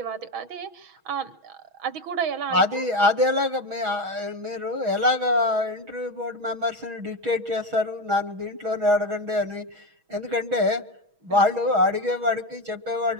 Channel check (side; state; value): left; late; 6.2 ms